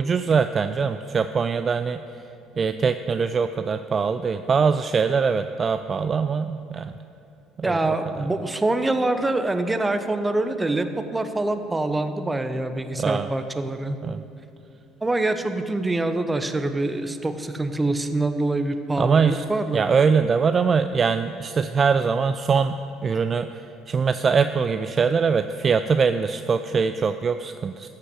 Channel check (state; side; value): quieter; left; 4.2 dB